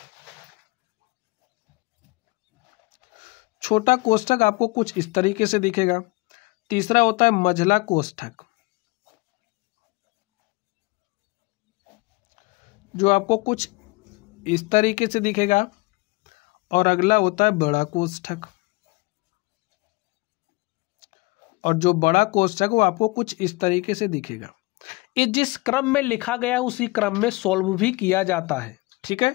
छोटा कोष्ठक आपको कुछ इस तरीके से दिखेगा। तीसरा होता है मझला कोष्ठक, जो आपको कुछ इस तरीके से दिखेगा। और अगला होता है बड़ा कोष्ठक, और जो बड़ा कोष्ठक वो आपको कुछ इस तरीके से दिखेगा। ये जिस क्रम में लिखा गया उसी क्रम में सॉल्व भी किया जाता है, ठीक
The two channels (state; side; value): quieter; right; 24.6 dB